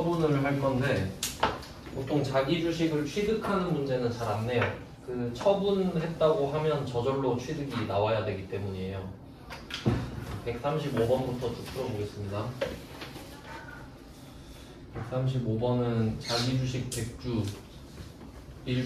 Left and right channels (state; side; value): identical; both; correlation 1.00